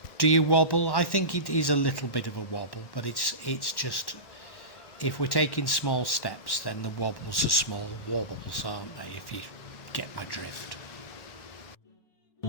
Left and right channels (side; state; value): right; late; 1.1 ms